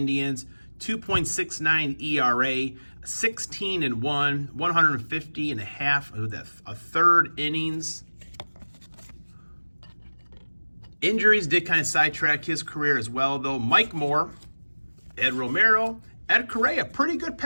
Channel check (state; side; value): inverted; both; correlation -1.00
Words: 2.69 ERA, 16-1, 150 and a half, a third innings. Injuries did kind of sidetrack his career as well, though. Mike Moore, Ed Romero, Ed Correa, pretty good